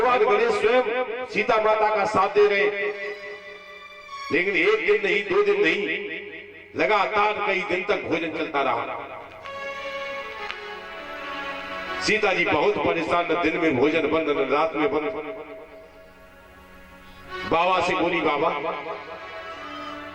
गणेश स्वयं सीता माता का साथ दे रहे। लेकिन एक दिन नहीं, 2 दिन नहीं, लगातार कई दिन तक भोजन चलता रहा। सीता जी बहुत परेशान, न दिन में भोजन बंद, न रात में बंद। बाबा से बोली, बाबा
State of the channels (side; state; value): both; identical; correlation 1.00